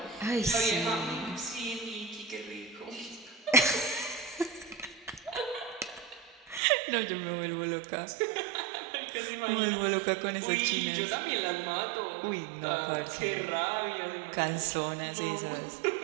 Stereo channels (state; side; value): drops out; left; at 6.6 s